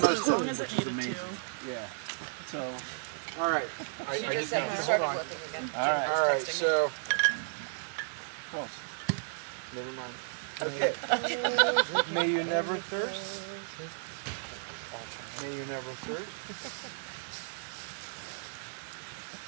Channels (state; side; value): silent; left; digital silence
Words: most of long it, as it which is needed amazing. to. Yeah. So, all right. I She just just said have you to started hold on. working again. All right. All right. So. Close. Never mind. Okay. May you never thirst. May you never thirst.